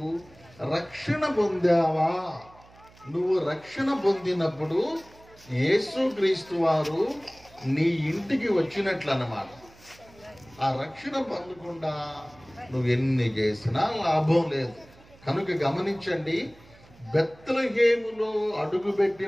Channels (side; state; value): right; noise; hum, 25 dB below the sound